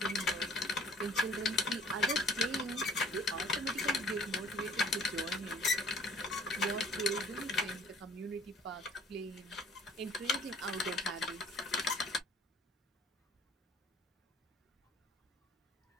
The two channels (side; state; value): both; normal; correlation 0.56